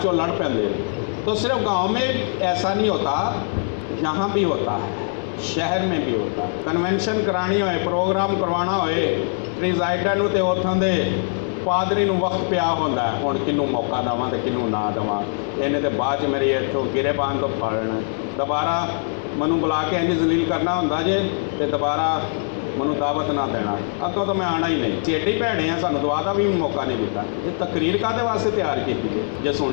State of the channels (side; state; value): right; silent; 64 dB below the other